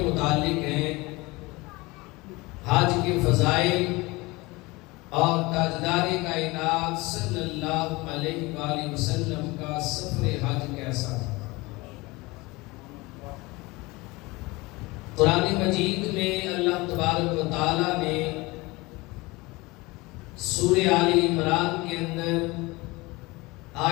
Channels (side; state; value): right; quieter; 23.0 dB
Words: متعلق ہیں۔ حج کے فضائل اور تاجدار کائنات صلی اللہ علیہ وآلہ وسلم کا سفر حج کیسا تھا۔ قرآن مجید میں اللہ تبارک و تعالی نے سورہ آل عمران کے اندر